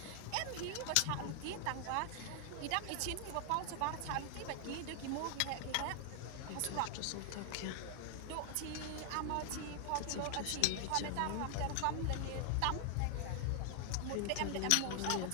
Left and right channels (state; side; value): different; both; correlation 0.00